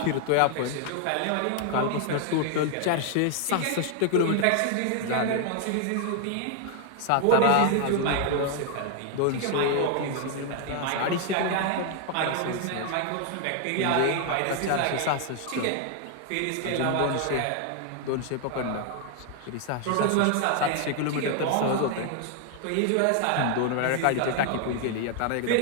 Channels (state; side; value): different; both; correlation 0.00